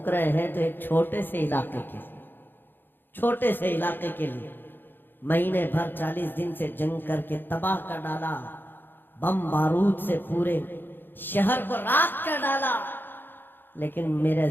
رہے ہیں تو ایک چھوٹے سے علاقے کے لیے مہینے بھر 40 دن سے جنگ کر کے تباہ کر ڈالا، بم بارود سے پورے شہر کو راکھ کر ڈالا۔ لیکن میرے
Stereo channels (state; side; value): late; right; 0.097 ms